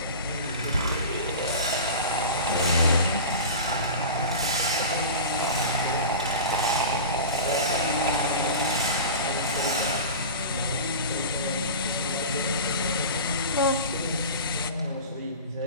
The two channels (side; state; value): both; inverted; correlation -0.32